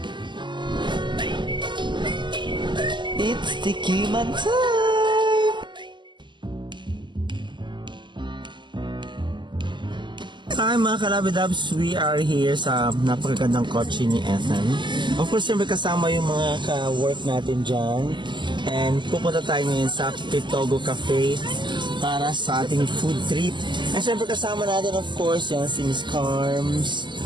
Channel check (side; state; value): left; late; 0.22 ms